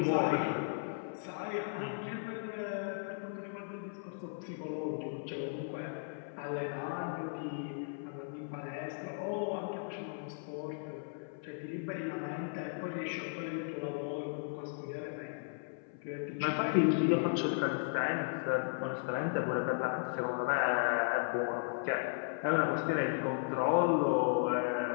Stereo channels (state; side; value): silent; right; 54 dB below the other